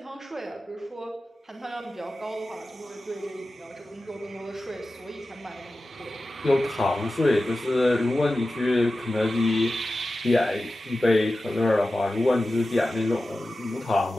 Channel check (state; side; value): normal; both; correlation 0.94